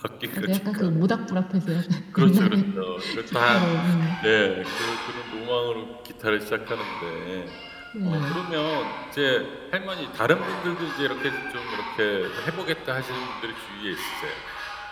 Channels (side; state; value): both; identical; correlation 1.00